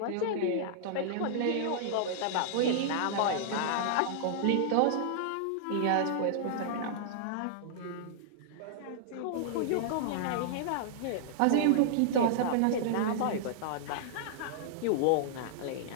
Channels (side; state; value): both; different; correlation -0.01